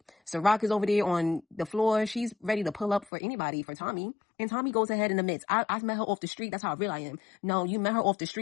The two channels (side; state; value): right; drops out; at 3.1 s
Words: CIROC is over there on the floor. She's ready to pull up for anybody, for Tommy. And Tommy goes ahead in the midst. I met her off the street. That's how real I am. No, you met her off the